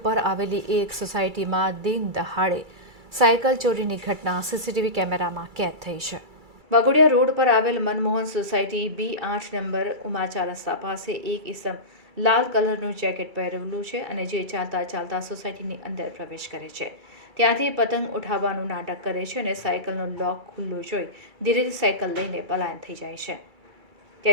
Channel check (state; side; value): late; left; 2.3 ms